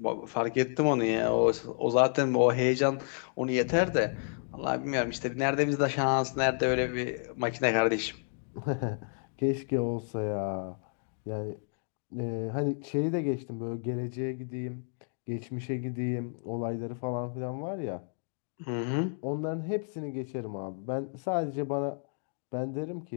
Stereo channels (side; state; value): right; silent; digital silence